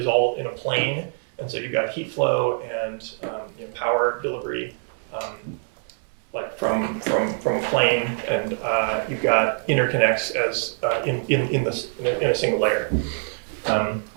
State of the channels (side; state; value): left; silent; digital silence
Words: all in a plane, and so you've got heat flow and power delivery. From a plane, and you've got interconnects as in a single layer.